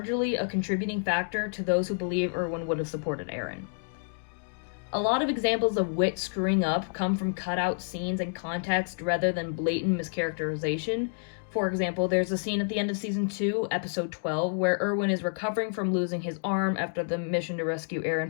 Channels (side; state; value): right; silent; digital silence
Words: a contributing factor to those who believe Erwin would have supported Eren. A lot of examples of WIT screwing up come from cutout scenes and context rather than blatant mischaracterization. For example, there's a scene at the end of Season 2, Episode 12, where Erwin is recovering from losing his arm after the mission to rescue